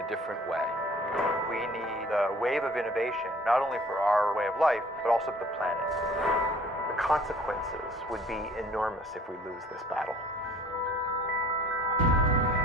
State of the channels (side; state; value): both; normal; correlation 0.51